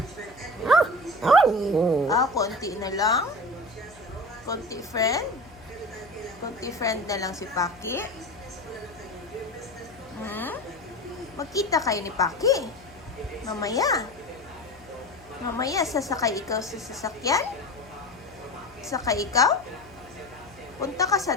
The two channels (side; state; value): left; noise; hum, 23 dB below the sound